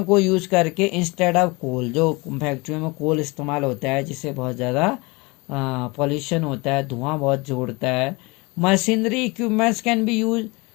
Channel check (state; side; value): quieter; right; 25.8 dB